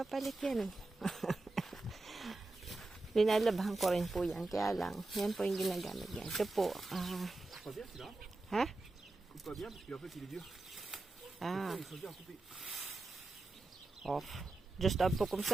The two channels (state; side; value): quieter; left; 3.1 dB